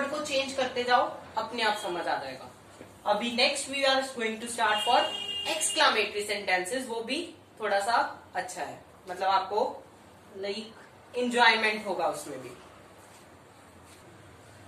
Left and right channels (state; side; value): identical; both; correlation 1.00